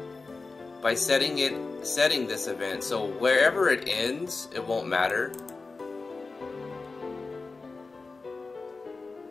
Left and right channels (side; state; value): right; quieter; 3.9 dB